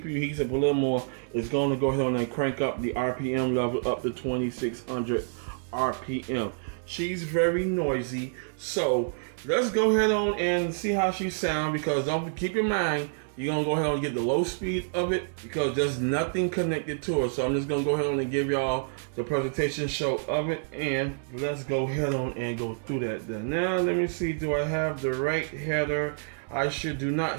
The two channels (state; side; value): silent; left; 59 dB below the other